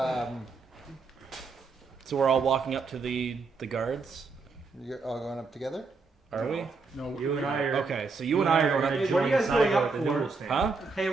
So we're all walking up to the guards. you're all going up together? Are we? No, You and I are. Okay, so you and I are going Hey, up. what are you guys going up the for? noodle stand. Huh? Hey,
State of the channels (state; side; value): quieter; left; 4.4 dB